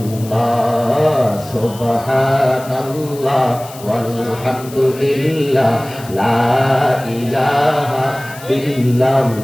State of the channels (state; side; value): noise; left; hiss, 18 dB below the sound